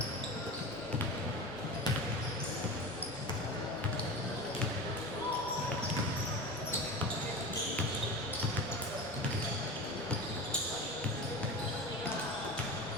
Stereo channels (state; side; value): normal; both; correlation 0.29